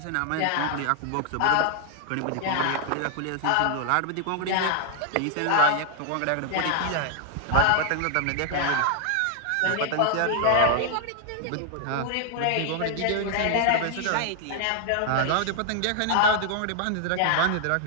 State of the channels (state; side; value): different; both; correlation 0.00